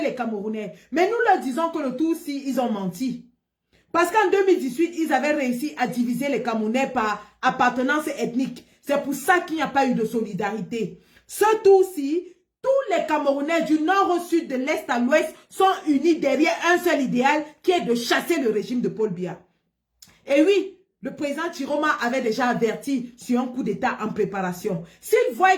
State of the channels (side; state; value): both; identical; correlation 1.00